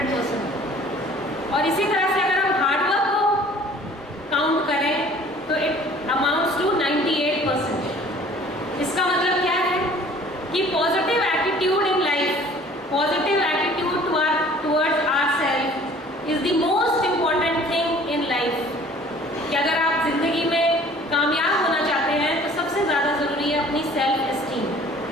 और इसी तरह से अगर हम हार्डवर्क को काउंट करें तो इट अमाउंट्स टू 98%। इसका मतलब क्या है कि positive attitude in life, positive attitude towards ourself is the most important thing in life. कि अगर आप जिंदगी में कामयाब होना चाहते हैं तो सबसे ज्यादा जरूरी है अपनी सेल्फ एस्टीम।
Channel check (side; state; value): both; normal; correlation 0.51